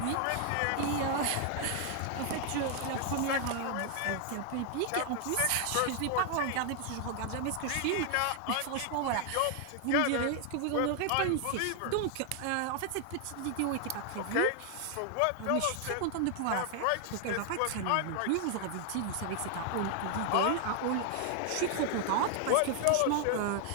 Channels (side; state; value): both; different; correlation 0.00